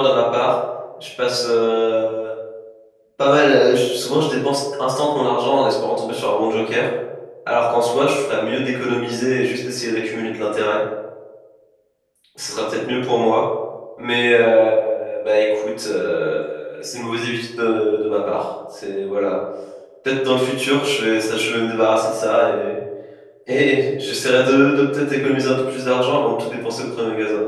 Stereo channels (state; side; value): identical; both; correlation 1.00